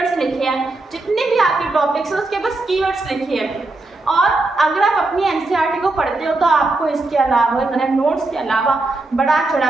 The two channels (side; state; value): left; quieter; 3.1 dB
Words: लिखे हैं, जितने भी आपके टॉपिक्स हैं उसके बस कीवर्ड्स लिखे हैं। और अगर आप अपनी एनसीईआरटी को पढ़ते हो तो आपको इसके अलावा करंट नोट्स के अलावा बढ़ा